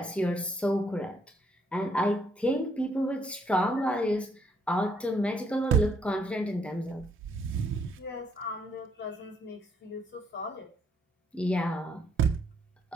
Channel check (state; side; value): normal; both; correlation 0.71